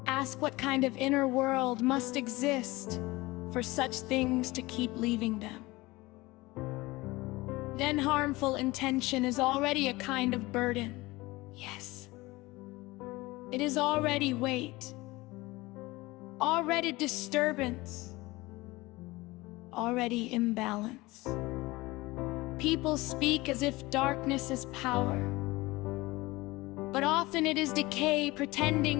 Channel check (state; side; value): quieter; right; 20.9 dB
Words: Ask what kind of inner world must exist for such things to keep leaving them. Then harmful intention is already a kind of burden. Yes. It is already weight, already disturbance, already imbalance. People speak as if darkness is power, but often it is decay